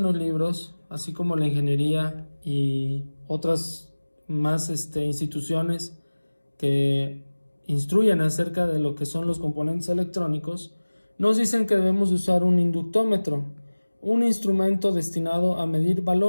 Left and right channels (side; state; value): both; inverted; correlation -1.00